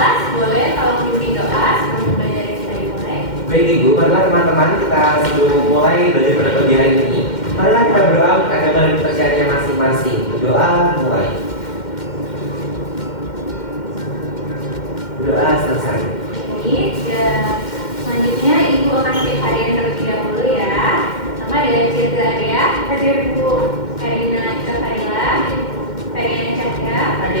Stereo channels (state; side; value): late; right; 2.1 ms